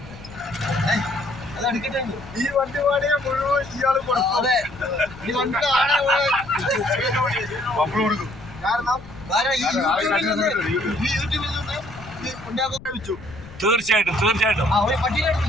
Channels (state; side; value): noise; left; rumble, 18 dB below the sound